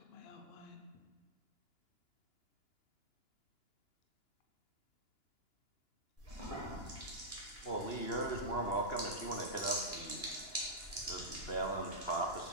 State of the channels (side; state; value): right; late; 2.9 ms